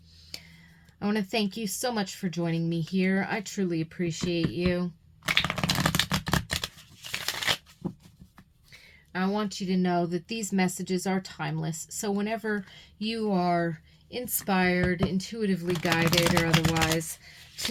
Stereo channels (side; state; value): both; identical; correlation 1.00